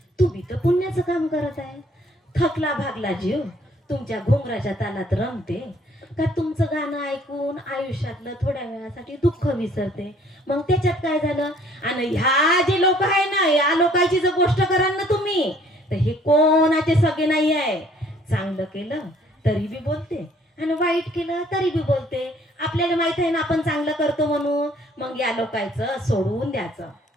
तुम्ही तर पुण्याचं काम करत आहे. थकला भागला जीव तुमच्या घुंगराच्या तालात रमते का तुमचं गाणं ऐकून आयुष्यातलं थोड्या वेळासाठी दुःख विसरते. मग त्याच्यात काय झालं. आणि ह्या जे लोक आहे ना या लोकांची जर गोष्ट कराल ना तुम्ही तर हे कोणाचे सगळे नाही आहे. चांगलं केलं तरी बी बोलते आणि वाईट केलं तरी बी बोलते. आपल्याला माहित आहे ना आपण चांगलं करतो म्हणून. मग या लोकांचं सोडवून द्यायचं.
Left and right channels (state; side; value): normal; both; correlation 0.59